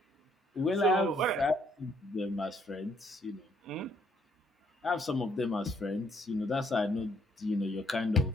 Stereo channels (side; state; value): both; normal; correlation 0.68